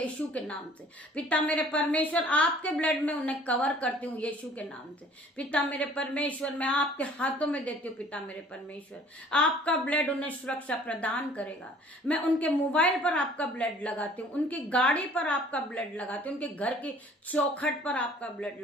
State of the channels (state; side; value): normal; both; correlation 0.53